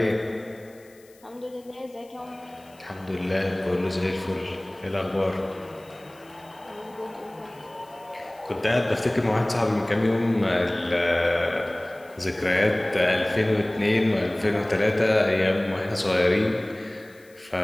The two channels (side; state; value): left; noise; hiss, 29 dB below the sound